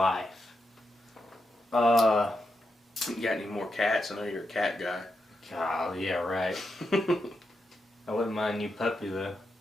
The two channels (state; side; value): normal; both; correlation 0.85